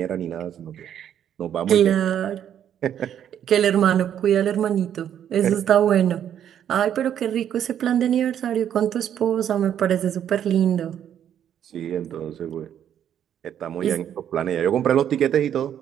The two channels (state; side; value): quieter; left; 9.8 dB